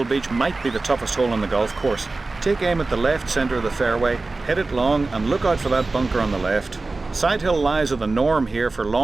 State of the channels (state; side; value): quieter; left; 3.5 dB